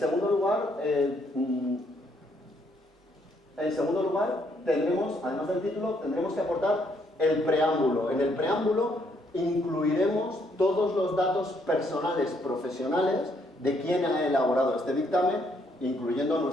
lugar, tendremos, además del título, tendremos que aportar el preámbulo. En el preámbulo incluiremos todos los datos personales profesionales de quien ha elaborado este dictamen, incluyendo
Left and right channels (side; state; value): both; normal; correlation 0.71